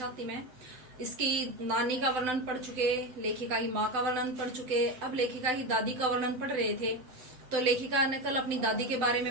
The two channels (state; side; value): late; left; 7.8 ms